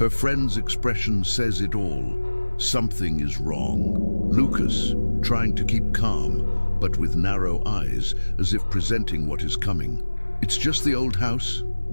friend's expression says it all. Something is wrong. Lucas, trying to keep calm, but with narrow eyes, as if presenting what is coming. It's just the old house.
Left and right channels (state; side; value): inverted; both; correlation -1.00